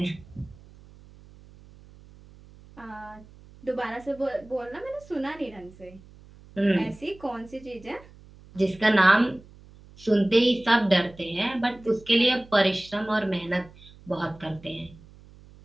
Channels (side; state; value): right; noise; hum, 23 dB below the sound